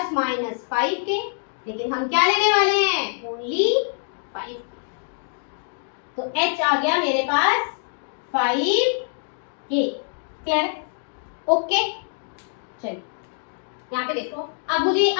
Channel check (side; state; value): right; silent; digital silence